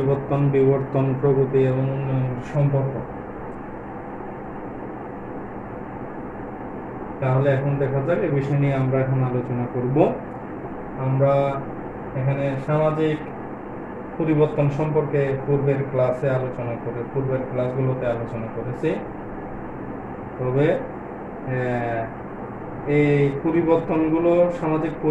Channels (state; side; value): identical; both; correlation 1.00